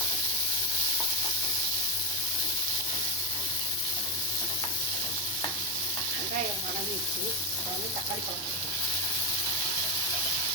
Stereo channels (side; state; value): both; normal; correlation 0.03